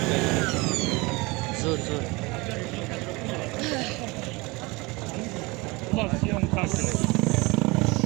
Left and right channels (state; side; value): quieter; left; 24.6 dB